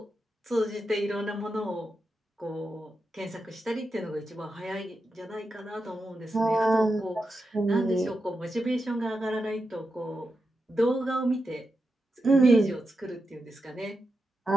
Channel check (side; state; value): both; normal; correlation 0.88